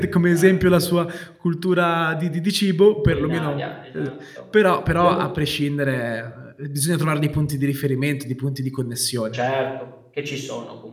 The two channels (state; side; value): identical; both; correlation 1.00